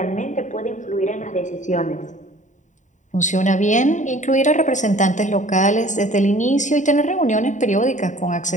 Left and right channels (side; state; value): right; late; 0.36 ms